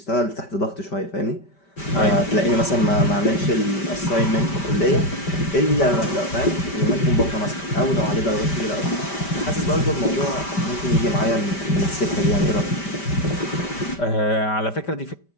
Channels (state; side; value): late; right; 5.1 ms